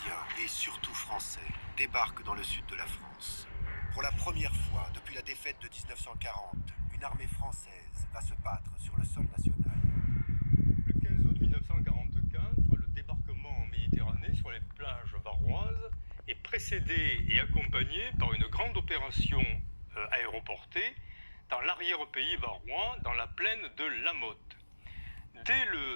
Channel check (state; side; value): inverted; both; correlation -1.00